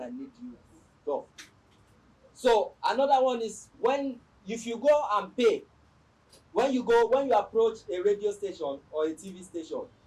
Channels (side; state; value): both; identical; correlation 1.00